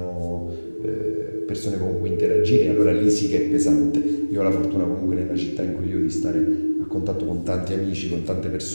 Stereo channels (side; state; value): both; inverted; correlation -1.00